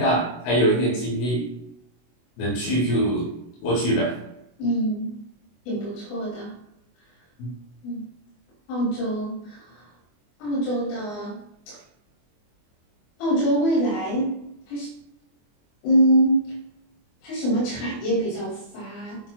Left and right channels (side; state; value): right; late; 24 ms